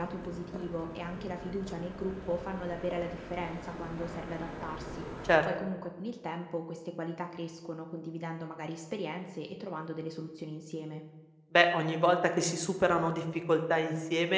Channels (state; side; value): identical; both; correlation 1.00